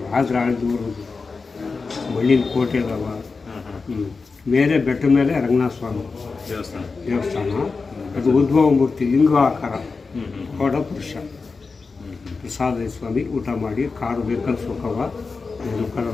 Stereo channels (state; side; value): quieter; right; 4.4 dB